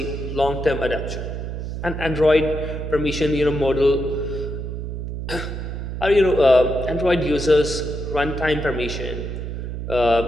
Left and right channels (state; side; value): noise; right; hum, 5 dB below the sound